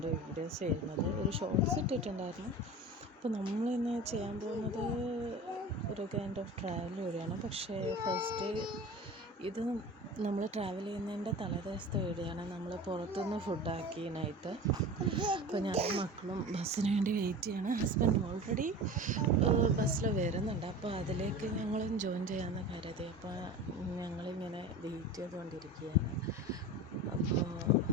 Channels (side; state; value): both; normal; correlation 0.34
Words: വീഡിയോസ് ചെയ്യുന്നത്. ഒരു ഷോർട്സ് ഇട്ടിട്ടുണ്ടായിരുന്നു. അപ്പോൾ നമ്മളിന്ന് ചെയ്യാൻ പോകുന്നത് ഒരു കൈൻഡ് ഓഫ് ട്രാവൽ വീഡിയോയാണ്. പക്ഷേ ഫസ്റ്റ് ഇത് നമ്മൾ ട്രാവൽ ചെയ്യുന്നതിൻ്റെ തലേദിവസത്തെ വീഡിയോയാണ്. നമ്മൾ പുറത്തുനിന്ന് ഫുഡാക്കി നൈറ്റ്. അപ്പോൾ ഞാൻ മക്കളും ബസ്സിന് വേണ്ടി വെയിറ്റ് ചെയ്യാണ്. ഹസ്ബൻഡ് ഓൾറെഡി ബസ്സിൽ വരുന്നുണ്ട്. അപ്പോൾ അതിലേക്ക് ഞങ്ങളും ജോയിൻ ചെയ്യാമെന്ന് കരുതി. അപ്പോൾ ഞങ്ങളിങ്ങനെ വെയിറ്റ് ചെയ്തുകൊണ്ടിരിക്കുകയാണ്. അപ്പോൾ